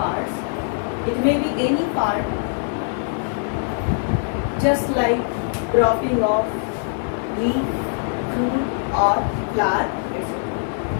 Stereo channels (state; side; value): silent; right; 62 dB below the other